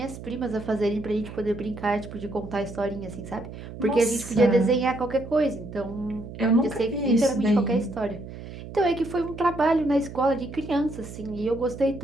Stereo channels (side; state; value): right; noise; hum, 12 dB below the sound